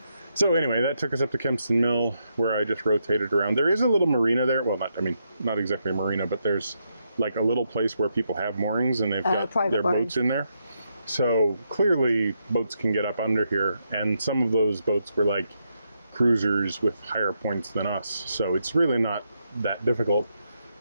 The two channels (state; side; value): inverted; both; correlation -0.81